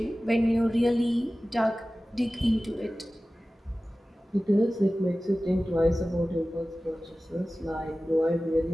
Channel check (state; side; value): normal; both; correlation 0.96